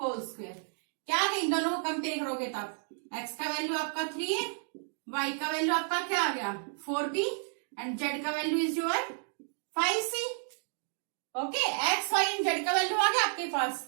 होल स्क्वायर। क्या है? इन दोनों को कंपेयर करोगे तब x का वैल्यू आपका 3 है, y का वैल्यू आपका क्या आ गया? 4b एंड z का value is your 5c। Okay, x, y and z का वैल्यू आ गया आपके पास।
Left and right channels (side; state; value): left; silent; digital silence